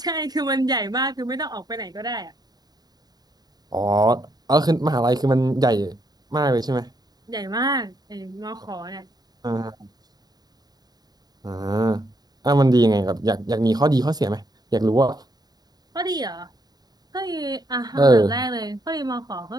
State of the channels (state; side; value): late; left; 0.19 ms